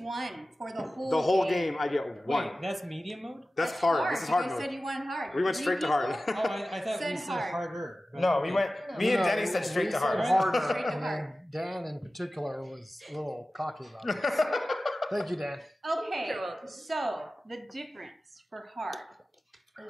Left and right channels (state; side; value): normal; both; correlation 0.96